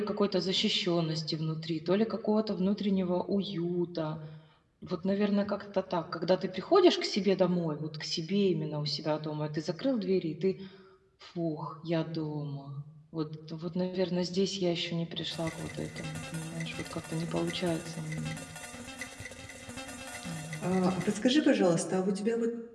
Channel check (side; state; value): both; identical; correlation 1.00